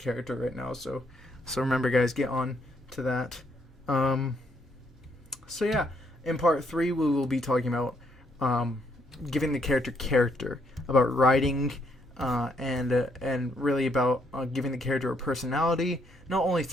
right now. So remember, guys, get on to that. So yeah, in part 3 we will be talking about giving the character, about writing, and really about giving the character a personality, not only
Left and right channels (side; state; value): both; normal; correlation 0.72